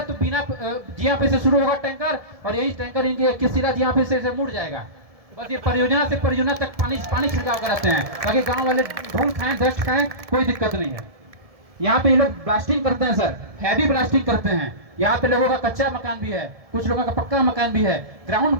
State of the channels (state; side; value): late; left; 1.7 ms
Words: तो बिना जिया पे से शुरू होगा टैंकर और यही टैंकर इनके किसिला जिया पे से मुड़ जाएगा। बस ये परियोजना से परियोजना तक पानी छिड़काव कराते हैं ताकि गांव वाले धूल खाएं, डस्ट खाएं, कोई दिक्कत नहीं है। यहाँ पे ये लोग ब्लास्टिंग करते हैं सर, हैवी ब्लास्टिंग करते हैं। यहाँ पे लोगों का कच्चा मकान भी है, कुछ लोगों का पक्का मकान भी है। ग्राउंड